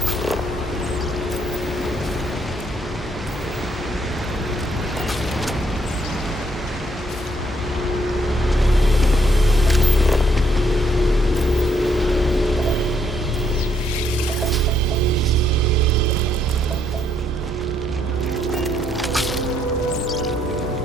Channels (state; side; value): normal; both; correlation 0.72